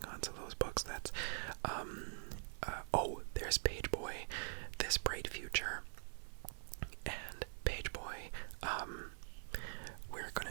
on. So those books, that's oh, there's Page Boy, This Bright Future, and Page Boy. We're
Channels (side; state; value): left; silent; digital silence